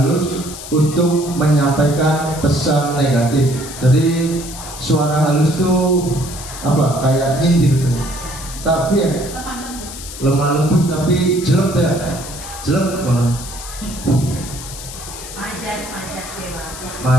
untuk menyampaikan pesan negatif. Jadi suara halus itu apa? Kayak nyindir tuh. Tapi ya lemah lembut tapi jelek ya. Jelek banget.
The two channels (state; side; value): noise; left; hiss, 12 dB below the sound